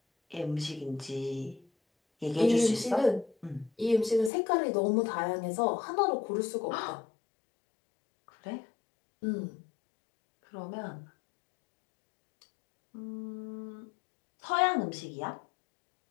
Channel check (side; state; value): right; drops out; at 4.3 s